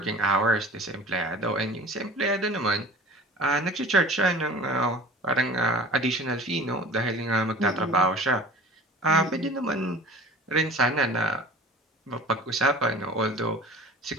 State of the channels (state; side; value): normal; both; correlation 0.42